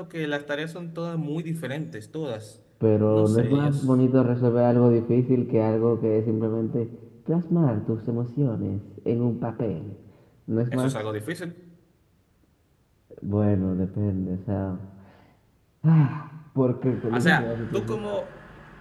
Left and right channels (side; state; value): both; identical; correlation 1.00